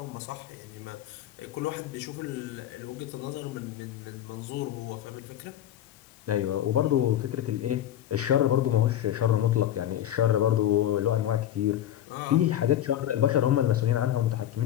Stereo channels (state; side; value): quieter; right; 11.7 dB